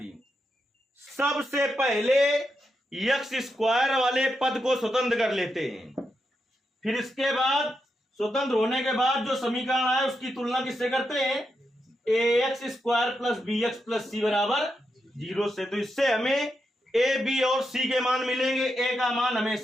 सबसे पहले x² वाले पद को स्वतंत्र कर लेते हैं, फिर इसके बाद स्वतंत्र होने के बाद जो समीकरण आए उसकी तुलना किससे करते हैं, ax² + bx + c बराबर 0 से। तो इससे हमें a, b और c के मान मिलेंगे। a का मान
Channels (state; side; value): normal; both; correlation 0.85